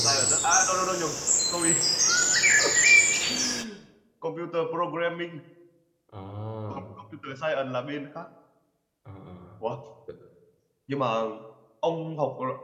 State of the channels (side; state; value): both; identical; correlation 1.00